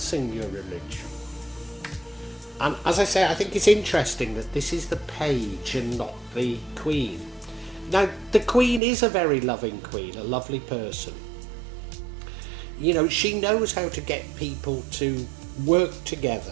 your religion? And as I say, I think it's interesting that this is the page and not the queen. Now, the queen is a very loving queen, a lovely person. She knows how to get people to work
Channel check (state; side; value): drops out; left; at 8.8 s